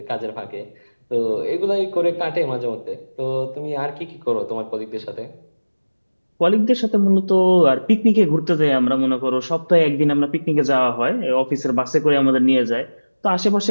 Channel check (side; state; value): both; inverted; correlation -1.00